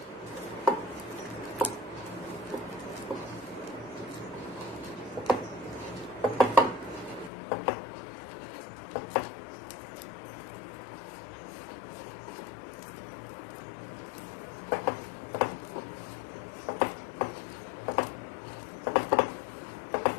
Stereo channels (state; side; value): drops out; right; at 7.3 s